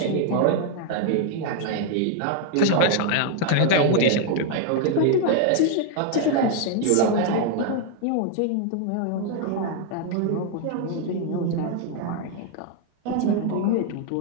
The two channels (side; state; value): both; different; correlation 0.00